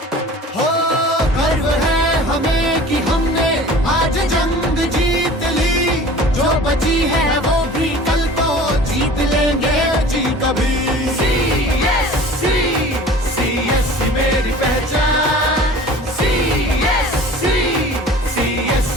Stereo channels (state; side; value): normal; both; correlation 0.43